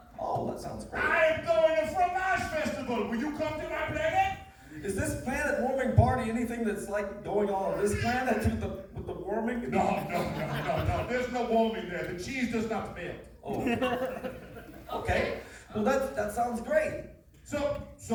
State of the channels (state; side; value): identical; both; correlation 1.00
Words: Oh, that sounds great. I am going to Fromage Festival. Will you come to my planet? Is this planet warming party anything that's like going on this planet with the warming? No. There's no warming there. The cheese does not melt. Oh. Okay. Well, that sounds great. So